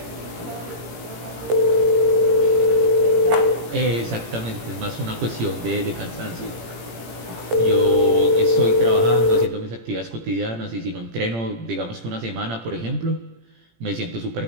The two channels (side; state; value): left; late; 17 ms